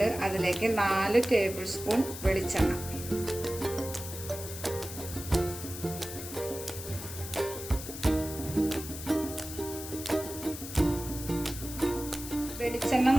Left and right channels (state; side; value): noise; left; hiss, 10 dB below the sound